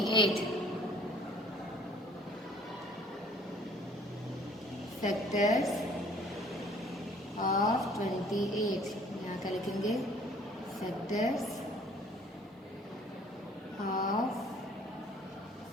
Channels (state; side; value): normal; both; correlation 0.55